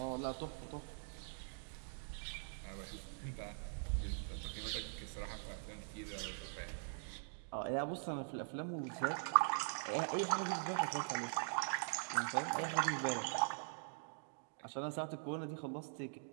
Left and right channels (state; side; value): silent; left; digital silence